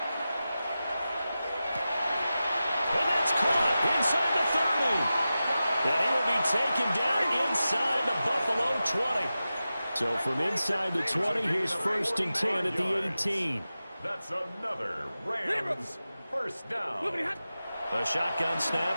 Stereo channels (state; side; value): inverted; both; correlation -0.93